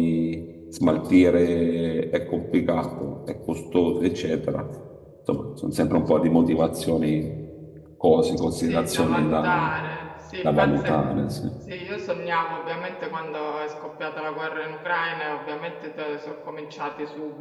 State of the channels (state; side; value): identical; both; correlation 1.00